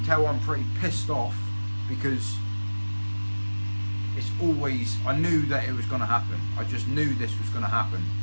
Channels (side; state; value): both; inverted; correlation -1.00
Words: tell I'm pretty pissed off, because it's always, I knew that it was going to happen. I just knew this was going to happen.